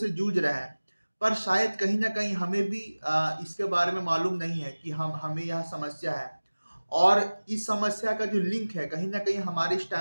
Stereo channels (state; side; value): inverted; both; correlation -1.00